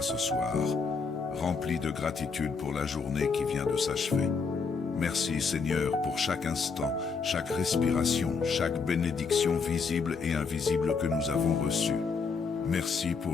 ce soir, remplis de gratitude pour la journée qui vient de s'achever. Merci Seigneur pour chaque instant, chaque respiration, chaque bénédiction visible et invisible que nous avons reçue. Merci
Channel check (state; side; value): quieter; right; 5.0 dB